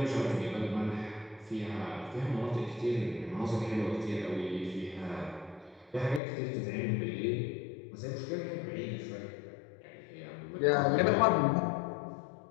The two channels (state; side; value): drops out; right; at 6.2 s